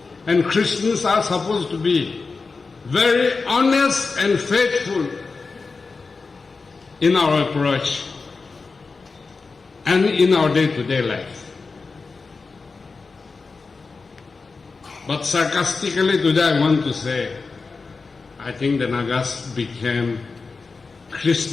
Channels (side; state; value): right; quieter; 4.3 dB